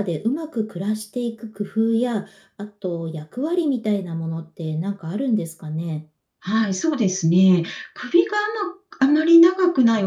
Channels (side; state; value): both; identical; correlation 1.00